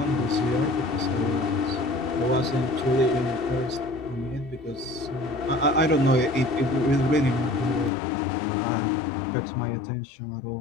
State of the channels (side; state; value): right; drops out; at 7.9 s